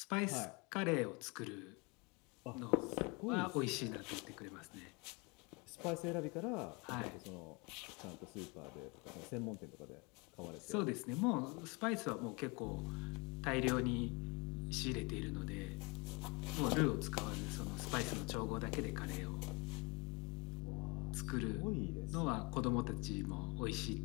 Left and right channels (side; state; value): right; quieter; 29.2 dB